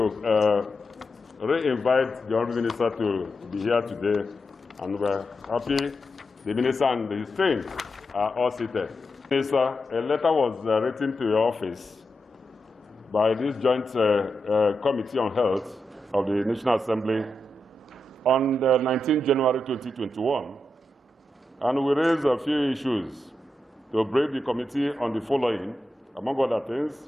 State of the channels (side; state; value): both; normal; correlation 0.87